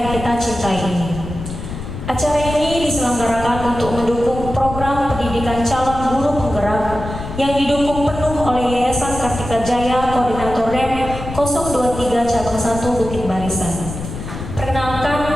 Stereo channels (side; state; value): left; noise; rumble, 9 dB below the sound